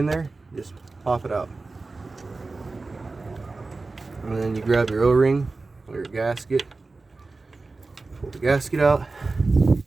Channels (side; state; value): left; quieter; 3.6 dB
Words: there, just pop it out. And then you grab your O-ring or your gasket. Pull the gasket out.